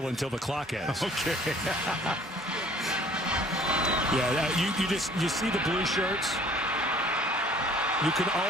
until the clock ends. Okay. Yeah, you see the blue shirts. You can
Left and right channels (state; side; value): normal; both; correlation 0.54